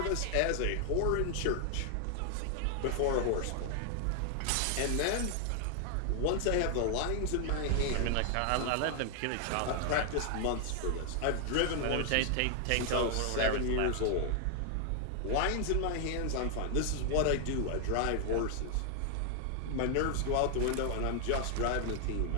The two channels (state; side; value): different; both; correlation 0.00